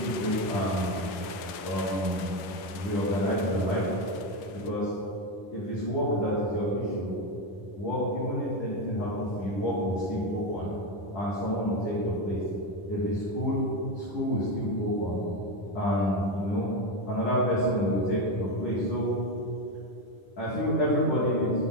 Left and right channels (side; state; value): right; late; 11 ms